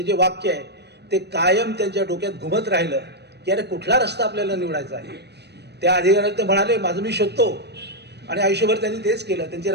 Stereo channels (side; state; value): left; late; 0.49 ms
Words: जे वाक्य आहे ते कायम त्यांच्या डोक्यात घुमत राहिलं की अरे कुठला रस्ता आपल्याला निवडायचा आहे. त्या अधिकाऱ्याला ते म्हणाले, माझं मी शोधतो. आणि आयुष्यभर त्यांनी तेच केलं. त्यांचे